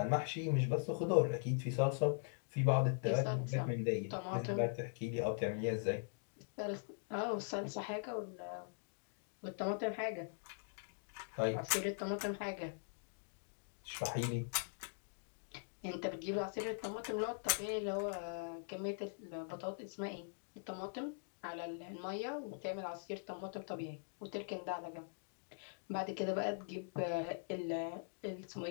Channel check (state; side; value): silent; right; digital silence